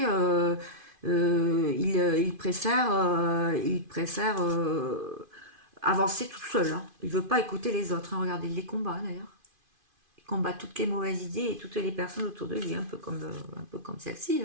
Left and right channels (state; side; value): late; left; 2.5 ms